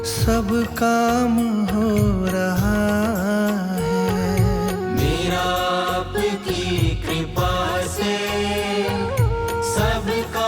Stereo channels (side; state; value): both; identical; correlation 1.00